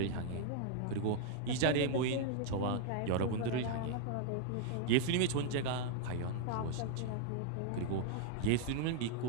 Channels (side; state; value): both; different; correlation -0.01